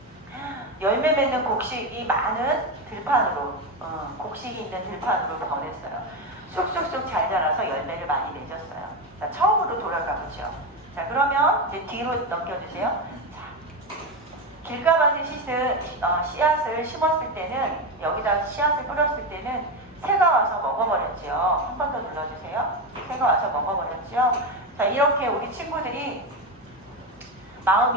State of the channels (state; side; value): normal; both; correlation 0.14